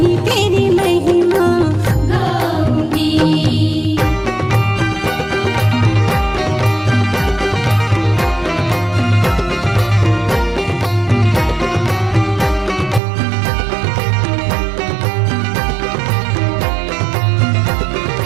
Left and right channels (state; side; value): drops out; left; at 13.0 s